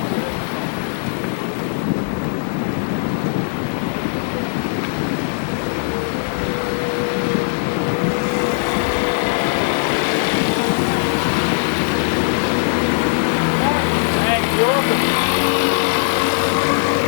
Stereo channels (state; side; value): silent; right; digital silence